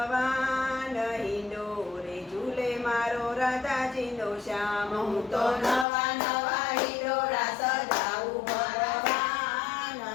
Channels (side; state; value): right; drops out; at 5.9 s